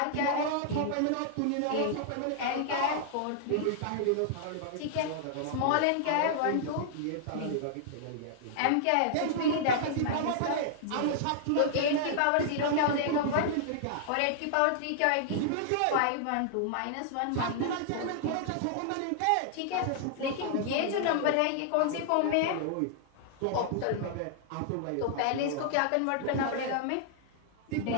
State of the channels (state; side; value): different; both; correlation -0.01